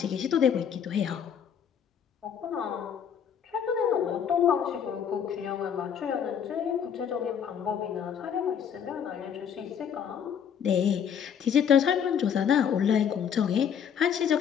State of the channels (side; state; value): right; quieter; 8.0 dB